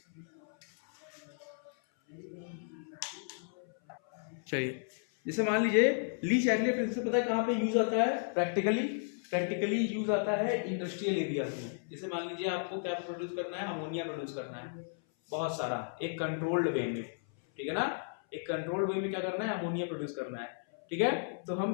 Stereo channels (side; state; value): right; silent; 55 dB below the other